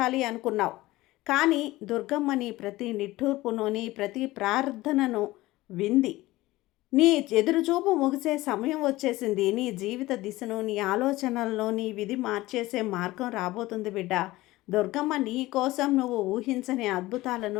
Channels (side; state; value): right; quieter; 18.4 dB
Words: అనుకున్నావు. కానీ దుర్గమ్మ నీ ప్రతి నిట్టూర్పును, నీ ప్రతి ప్రార్థనను వింది. నీ ఎదురుచూపు ముగిసే సమయం వచ్చేసింది. నీ జీవిత దిశను, నీ ఆలోచనలను, నీ విధి మార్చేసే మార్గం రాబోతుంది బిడ్డ. దుర్గమ్మ నీ కోసం నువ్వు ఊహించని